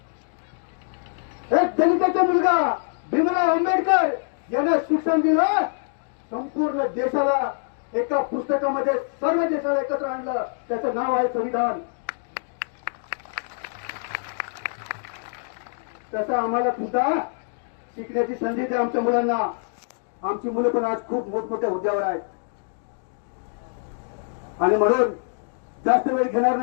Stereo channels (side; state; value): right; silent; digital silence